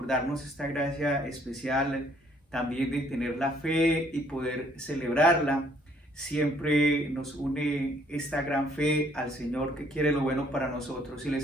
darnos esta gracia especial también de tener la fe y poder celebrarla. Siempre nos une esta gran fe al Señor que quiere lo bueno para nosotros y le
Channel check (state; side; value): normal; both; correlation 0.63